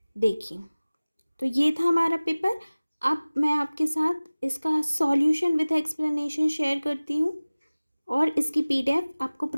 देखिए, तो ये था हमारा पेपर। अब मैं आपके साथ इसका सॉल्यूशन विद एक्सप्लेनेशन शेयर करती हूँ और इसकी PDF आपको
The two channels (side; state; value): both; inverted; correlation -0.99